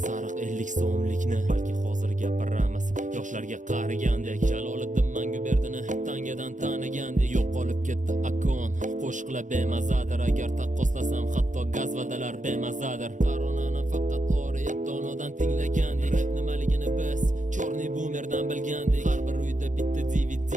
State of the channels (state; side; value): late; left; 0.36 ms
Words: sariq 50 so'mlikni. Balki hozir gapiramiz yoshlarga qaragandek. Jaloliddin Manguberdini tangadan tanigandek. Yo'qolib ketdi akon, qo'shiqlar bemazadir. Agar taqqoslasam hatto gazvadalar bemazadir. Koronani faqat oriyatonodan tinglagandik. Rap nimaligini biz chorniy boomerdan bilgandik. Har bir uyda bitta DVD